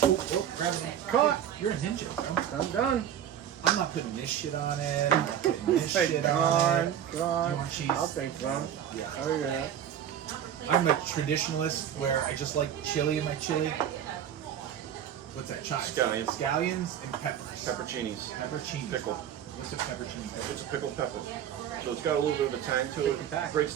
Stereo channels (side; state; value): left; quieter; 9.8 dB